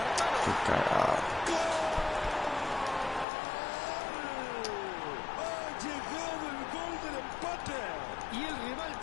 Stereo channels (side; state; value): right; drops out; at 3.2 s